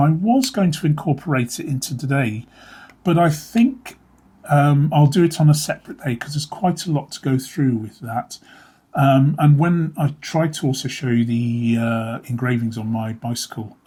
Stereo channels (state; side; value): identical; both; correlation 1.00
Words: was going to incorporate it into today, but I think I'll do it on a separate day because there's quite a lot to go through with that. And when I tried to also show you the engravings on my bicycle